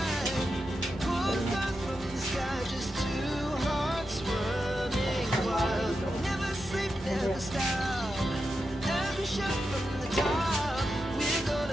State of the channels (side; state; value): both; normal; correlation 0.89